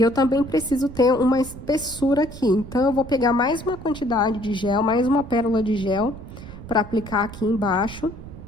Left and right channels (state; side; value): noise; right; rumble, 14 dB below the sound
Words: também preciso ter uma espessura aqui. Então, eu vou pegar mais uma quantidade de gel, mais uma pérola de gel, pra aplicar aqui embaixo.